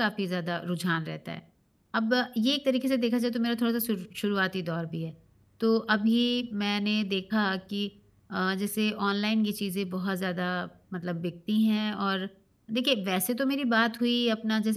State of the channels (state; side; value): identical; both; correlation 1.00